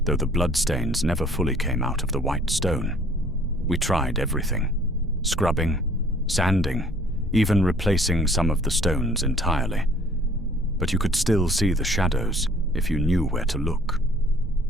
though the bloodstains never fully came out of the white stone. We tried everything: scrubbing, sanding, even replacing some of the stones entirely. But you could still see the shadows if you knew where to look.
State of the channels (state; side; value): normal; both; correlation 0.55